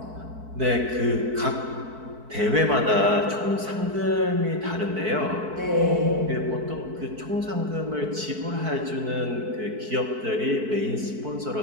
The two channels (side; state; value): left; late; 4.6 ms